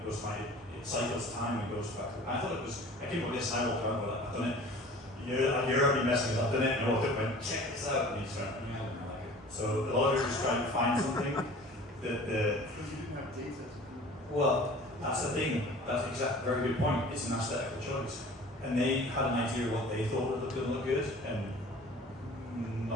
goes like, it cycles time and goes back. And I thought it was, I came up with this and I walked around, but I've done it. You're already messing up, I've done it, and I walked up and went, check this out, and he just went, yeah, I don't like it. So a lot of it was trying to find something that the... Because you didn't have data. Well, that's the thing, that's exactly, very good point, it's an aesthetical choice. And they had an idea of what they thought would look good, and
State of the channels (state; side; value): normal; both; correlation 0.44